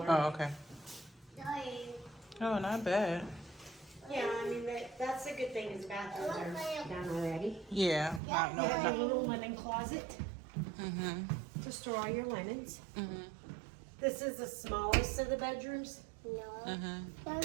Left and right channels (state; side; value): drops out; left; at 8.2 s